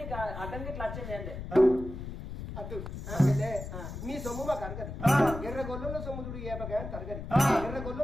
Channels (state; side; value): noise; left; rumble, 8 dB below the sound